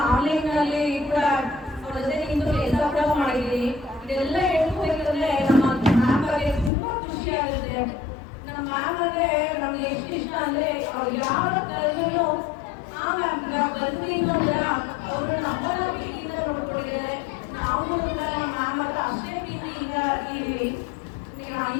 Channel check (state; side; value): drops out; right; at 6.7 s